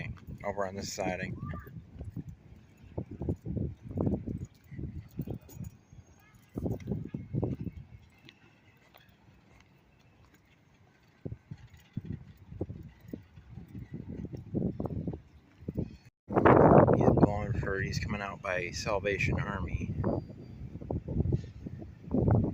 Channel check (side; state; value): both; identical; correlation 1.00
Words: over on this siding. He's coming out by Salvation Army.